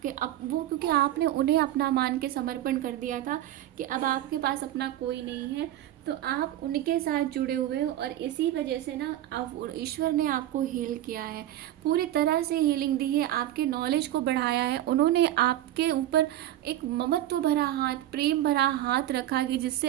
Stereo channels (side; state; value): left; quieter; 13.3 dB